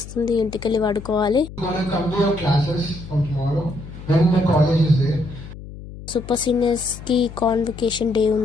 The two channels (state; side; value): noise; left; hum, 14 dB below the sound